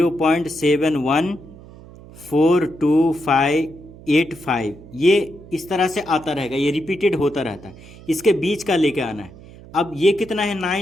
ये इस तरह से आता रहेगा, ये रिपीटेड होता रहता है। इसके बीच का लेके आना है। अब ये कितना है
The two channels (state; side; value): noise; right; hum, 19 dB below the sound